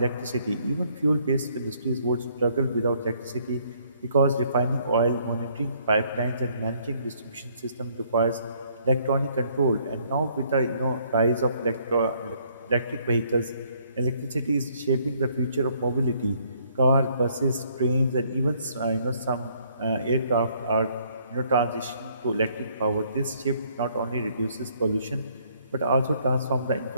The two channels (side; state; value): both; inverted; correlation -0.66